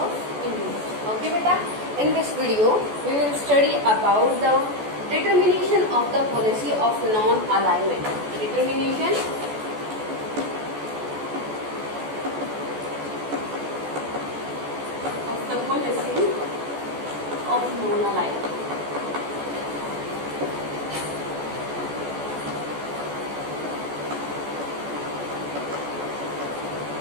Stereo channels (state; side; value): late; left; 14 ms